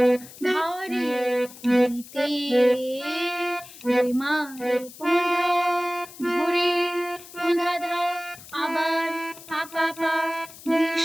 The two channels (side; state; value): left; noise; hiss, 18 dB below the sound